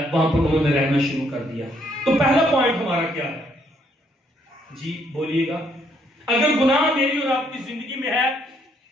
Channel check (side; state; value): both; normal; correlation 0.70